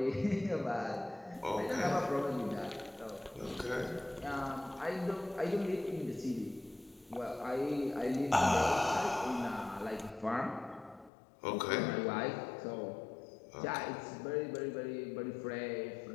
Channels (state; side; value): drops out; right; at 11.1 s